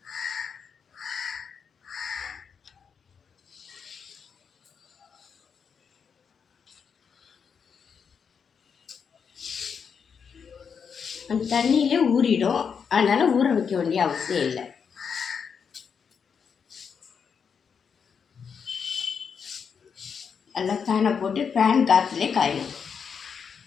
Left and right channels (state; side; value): quieter; right; 6.5 dB